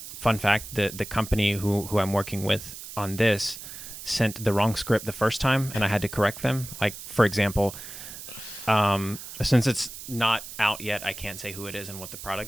fact: the company who I'm working with on this sent the wrong script the first time, and I had to correct them. Like, for example, since it's not out yet, I can't say who it is and what the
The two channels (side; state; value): right; noise; hiss, 12 dB below the sound